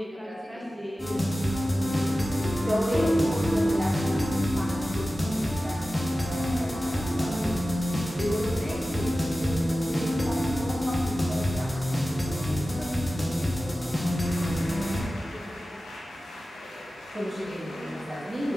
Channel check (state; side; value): normal; both; correlation 0.95